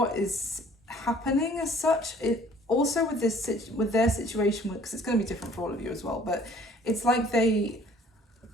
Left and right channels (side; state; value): both; normal; correlation 0.55